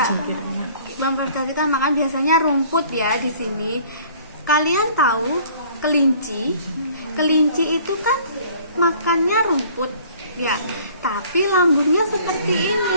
memfermentasikan makan biasanya rumput ya di sini. Kalian tahu kelinci? Kelinci itu kan makannya rumput ya, tapi lambungnya seperti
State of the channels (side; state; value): both; inverted; correlation -0.53